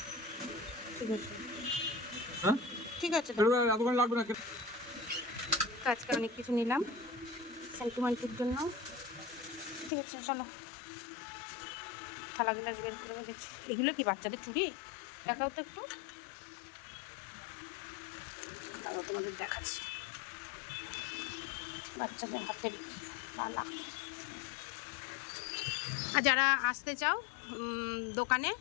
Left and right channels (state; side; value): drops out; right; at 9.9 s